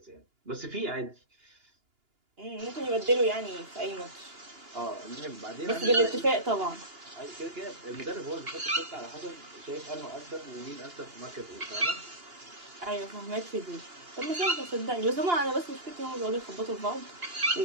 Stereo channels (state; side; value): late; left; 2.9 ms